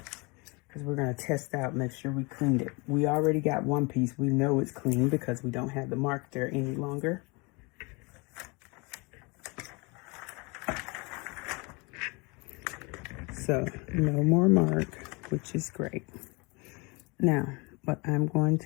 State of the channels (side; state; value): right; quieter; 28.4 dB